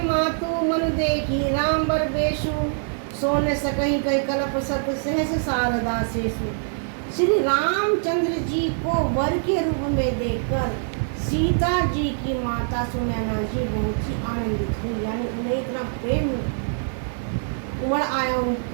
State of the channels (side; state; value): left; silent; digital silence